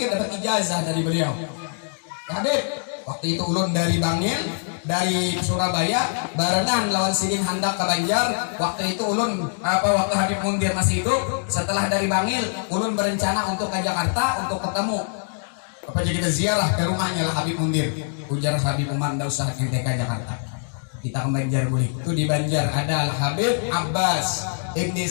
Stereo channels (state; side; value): silent; right; digital silence